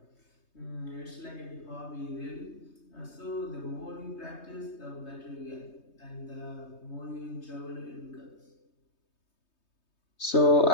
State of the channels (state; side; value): late; right; 3.2 ms